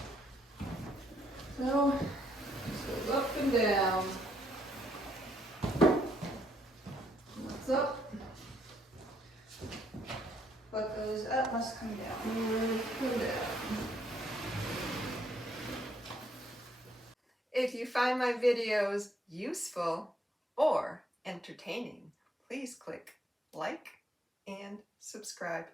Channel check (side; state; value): both; normal; correlation 0.71